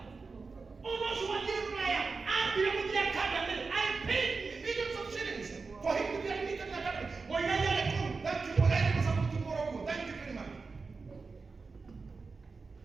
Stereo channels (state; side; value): quieter; left; 4.4 dB